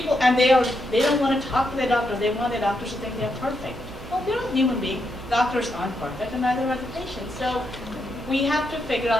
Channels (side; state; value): right; noise; hum, 15 dB below the sound